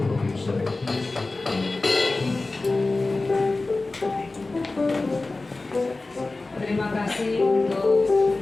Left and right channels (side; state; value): right; quieter; 3.3 dB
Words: Bapak Ibu Saudara. Terima kasih untuk